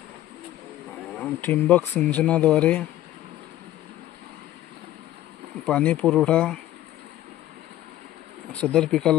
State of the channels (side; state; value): right; quieter; 13.9 dB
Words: ठिबक सिंचनाद्वारे पाणी पुरवठा सदर